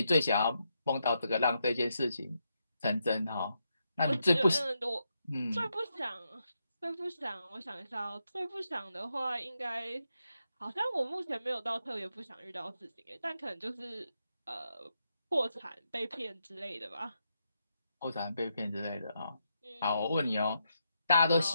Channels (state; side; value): inverted; both; correlation -0.82